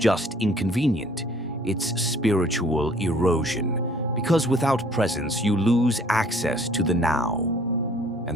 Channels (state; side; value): normal; both; correlation 0.57